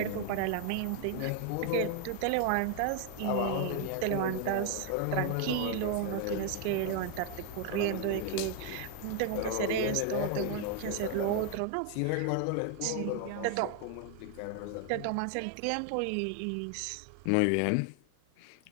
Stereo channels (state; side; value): different; both; correlation 0.00